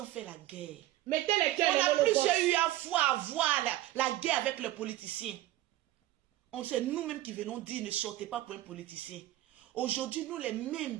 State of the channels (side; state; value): left; quieter; 15.2 dB